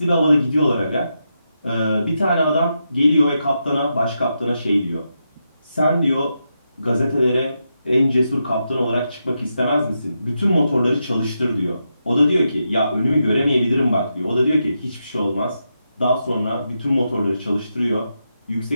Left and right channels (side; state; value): both; inverted; correlation -0.85